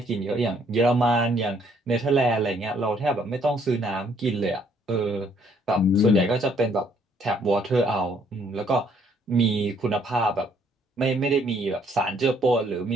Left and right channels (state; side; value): normal; both; correlation 0.66